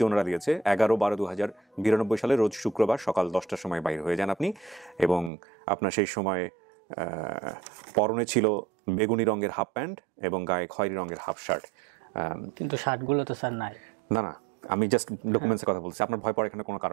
ওনারা দিয়েছে 11/12/2092 সালে রোজ শুক্রবার সকাল 10টার সময় বাইরে হয়ে যান আপনি এবং আপনার সেই সময় পরনে ছিল বেগুনি রঙের হাফ প্যান্ট এবং গায়ে খয়েরি রঙের হাফ শার্ট কিন্তু শার্টগুলো তো স্যার নাই না আমি জাস্ট ডকুমেন্টসের কথা বলছি আপনার ভয় পাওয়ার এখানে কোনো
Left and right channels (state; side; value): drops out; left; at 5.3 s